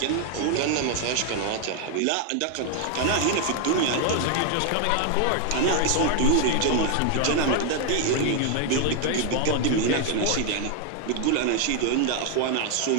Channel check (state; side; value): different; both; correlation 0.01